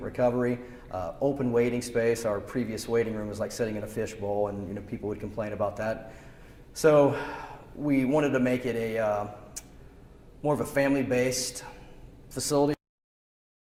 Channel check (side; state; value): both; identical; correlation 1.00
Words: open waiting space. Our previous waiting room was like sitting in a fishbowl, and people would complain about that. So we wanted to make it a more of a family-based facility.